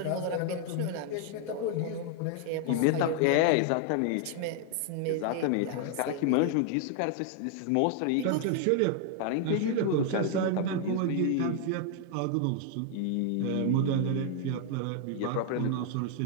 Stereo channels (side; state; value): both; different; correlation 0.00